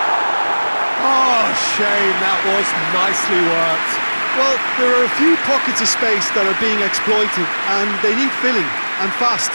Oh, shame, that was nicely worked. Well, there are a few pockets of space that are being exploited, and they need filling, and fast.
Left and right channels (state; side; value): inverted; both; correlation -1.00